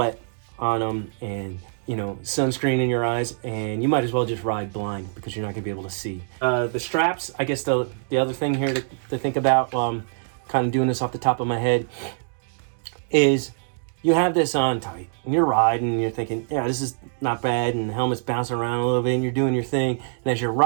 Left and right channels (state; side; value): silent; left; digital silence